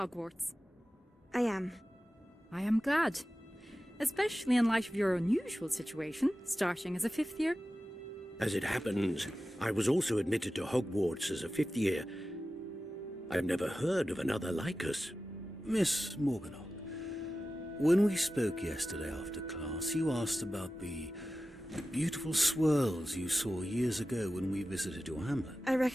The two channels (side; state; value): both; normal; correlation 0.94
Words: I am. I am glad. Especially in light of your unusual situation, starting as a 5th year. As it happens, I was also admitted to Hogwarts as a 5th year. I've never heard of another like us. Miss Morganach, when we spoke yesterday after class, you asked about the beautiful swirls you saw years ago when we visited your hamlet. I